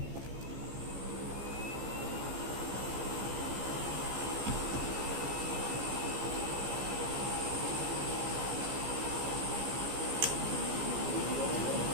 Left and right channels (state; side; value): late; left; 15 ms